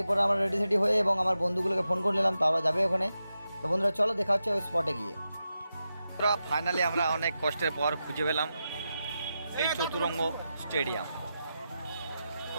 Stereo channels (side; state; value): both; inverted; correlation -0.89